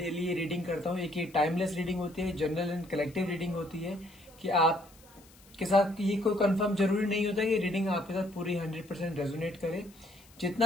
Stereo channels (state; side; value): noise; left; hiss, 26 dB below the sound